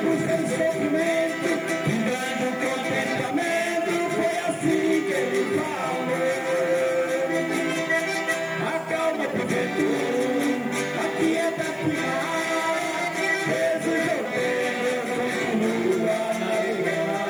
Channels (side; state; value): left; noise; hiss, 28 dB below the sound